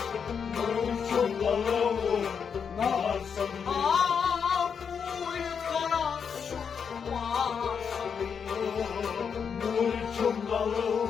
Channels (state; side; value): quieter; right; 6.7 dB